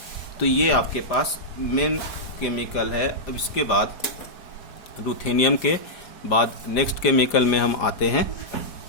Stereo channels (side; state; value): right; late; 4.9 ms